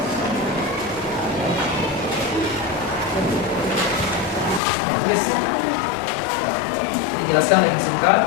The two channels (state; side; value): drops out; right; at 4.6 s